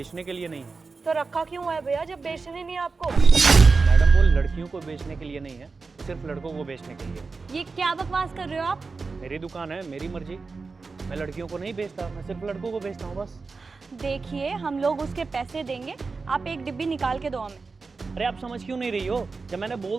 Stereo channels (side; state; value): left; quieter; 4.3 dB